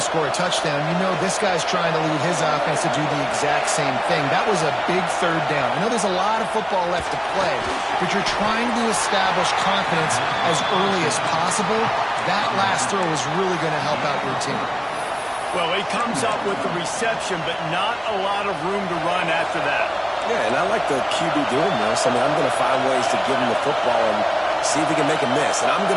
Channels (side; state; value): both; identical; correlation 1.00